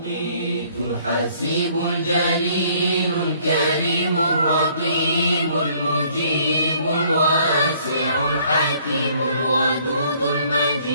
الحسيب الجليل الكريم الرقيب المجيب الواسع الحكيم الودود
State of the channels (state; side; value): inverted; both; correlation -0.61